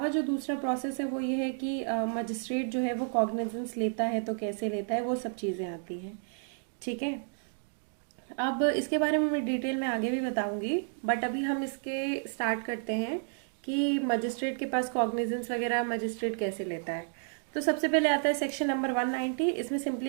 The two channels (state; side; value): silent; left; 57 dB below the other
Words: जो दूसरा प्रोसेस है वो ये है कि मजिस्ट्रेट जो है वो कॉग्निजेंस लेता है तो कैसे लेता है, वो सब चीज़ें आती हैं। ठीक है, अब इसके बारे में मैं डिटेल में आगे भी बताऊंगी, बट अभी हम इसके स्टार्ट करते हैं कि मजिस्ट्रेट के पास कॉग्निजेंस वगैरह मजिस्ट्रेट कैसे लेता है। तो सबसे पहले आता है सेक्शन नंबर 190। इसमें